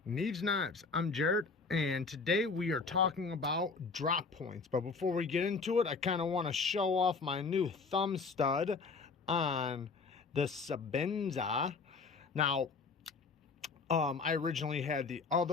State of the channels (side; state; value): right; quieter; 4.6 dB